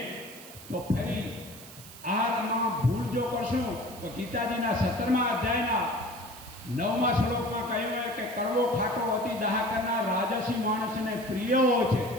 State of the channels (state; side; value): noise; right; hiss, 17 dB below the sound